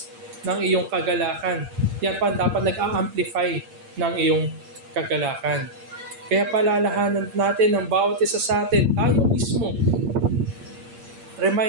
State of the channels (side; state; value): left; late; 8.7 ms